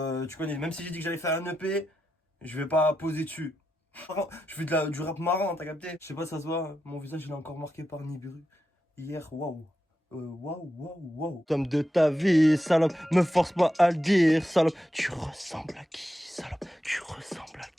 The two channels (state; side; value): normal; both; correlation 0.87